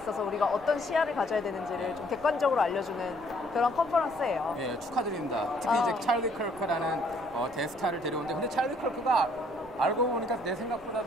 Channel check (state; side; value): noise; right; rumble, 23 dB below the sound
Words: 우리가 어떤 시야를 가져야 되는지를 좀 객관적으로 알려주는 그런 컨퍼런스예요. 네, 축하드립니다. 특히 이제 찰리 커크라는 대스타를 데려오는데 근데 찰리 커크가 알고 보니까 내